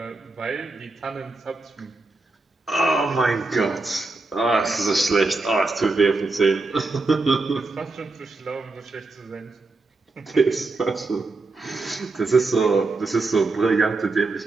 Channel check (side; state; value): left; quieter; 3.4 dB